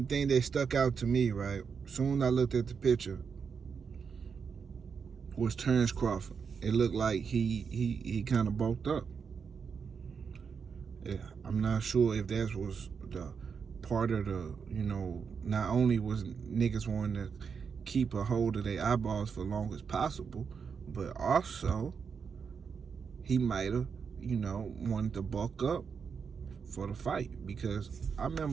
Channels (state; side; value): quieter; left; 6.1 dB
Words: the things that stuck out to me, right, soon as I looked at the picture, was Terence Crawford. It looked like he kind of bulked up. Yeah, I'm not sure if that was the part of the, not only was niggas wanting to keep a hold of their eyeballs for long as possible, but also he might have, wanted to bulk up for the fight. Because I